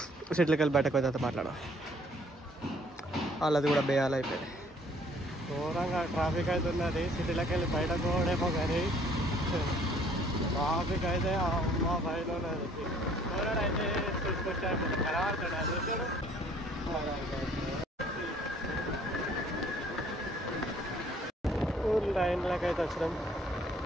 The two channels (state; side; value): normal; both; correlation 0.59